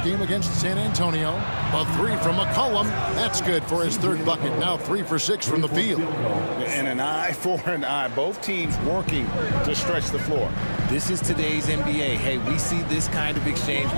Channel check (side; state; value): both; inverted; correlation -1.00